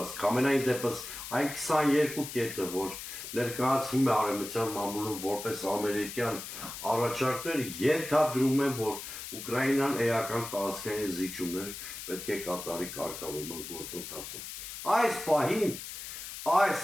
Ամենայն դեպս այն 22 կետը, որ ներկայացվում է արևմտյան մամուլում որպես ամերիկյան առաջարկներ, ենթադրում են, որ Ուկրաինան էական տարածքային զիջումներ պետք է կատարի կարգավորման գործընթացում։ Այս պահին, այս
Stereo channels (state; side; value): noise; left; hiss, 9 dB below the sound